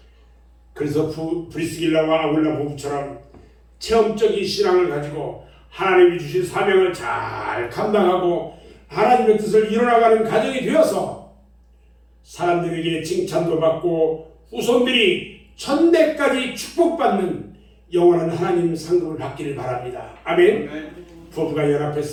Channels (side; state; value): both; identical; correlation 1.00